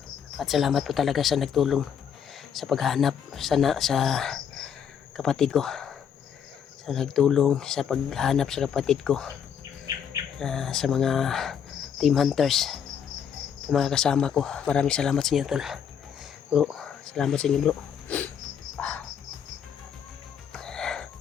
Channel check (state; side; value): quieter; right; 8.0 dB